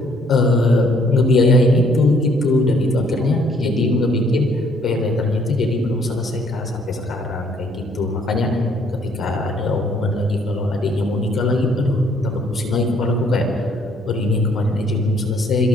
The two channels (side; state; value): both; normal; correlation 0.64